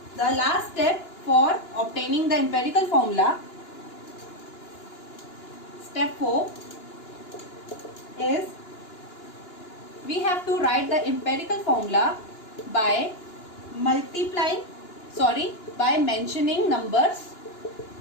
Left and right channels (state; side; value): late; right; 2.9 ms